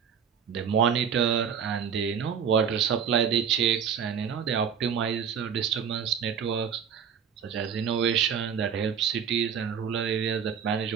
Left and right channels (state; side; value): quieter; left; 7.4 dB